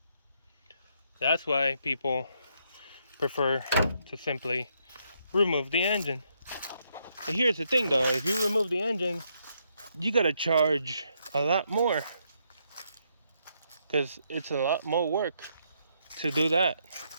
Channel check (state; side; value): inverted; both; correlation -0.75